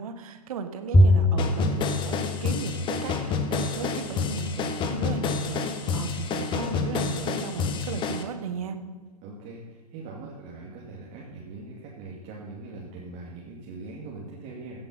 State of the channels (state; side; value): normal; both; correlation 0.42